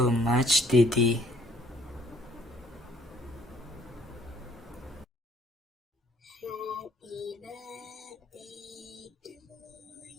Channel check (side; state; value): both; normal; correlation 0.63